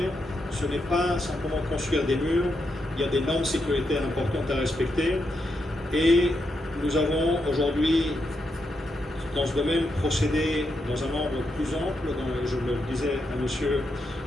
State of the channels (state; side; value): normal; both; correlation 0.83